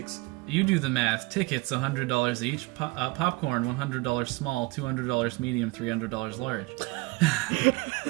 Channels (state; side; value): quieter; left; 24.0 dB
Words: You do the math. Tickets $100 each. Popcorn $100 small, $200 medium, $300 large.